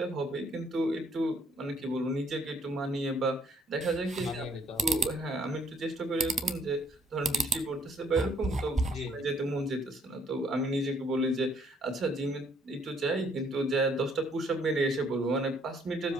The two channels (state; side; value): normal; both; correlation 0.65